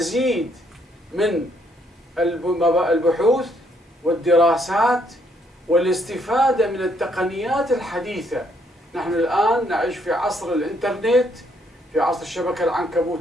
من البحوث والدراسات والاستفادة من التقنيات الحديثة. نحن الآن نعيش في عصر الإنترنت، في عصر الشبكة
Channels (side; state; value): both; normal; correlation 0.70